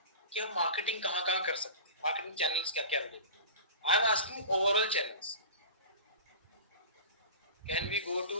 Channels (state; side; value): inverted; both; correlation -0.34